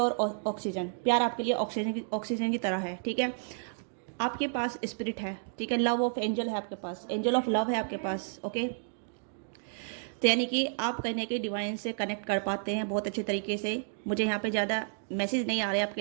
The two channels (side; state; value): left; silent; digital silence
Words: ऑक्सीजन, प्यार आपके लिए ऑक्सीजन की तरह है, ठीक है। आपके पास स्पिरिट है, ठीक है, लव ऑफ एंजल है आपके पास, एंजल ऑफ लव है आपके पास। ओके, तो यानी कि आप कहीं ना कहीं डिवाइन से कनेक्ट कर पाते हैं बहुत अच्छे तरीके से। मुझे यहाँ पे ज़्यादा मैसेज नहीं आ रहे